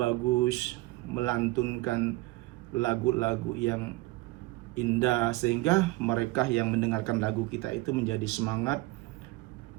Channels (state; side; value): quieter; left; 20.4 dB